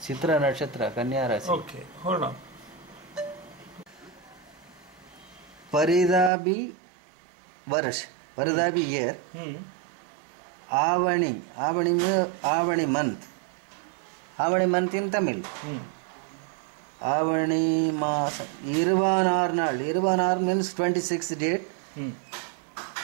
சித்ர நட்சத்திர கன்னியா ராசி. Okay, hold on. Paridabi Varsh, Paridabi year. Avani month. Avani month in Tamil. Avani Masa. Irvanarnal. Irvanar means 26th date.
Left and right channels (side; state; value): left; drops out; at 6.3 s